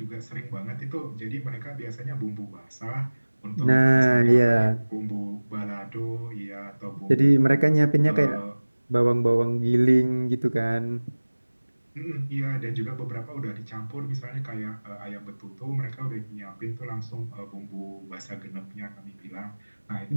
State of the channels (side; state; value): both; inverted; correlation -1.00